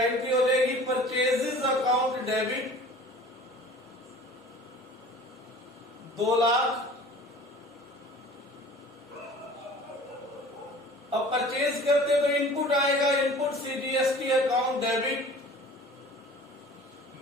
एंट्री हो जाएगी? Purchases account debit 2 lakh. अब परचेज करते तो इनपुट आएगा, input CGST account debit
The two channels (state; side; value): normal; both; correlation 0.44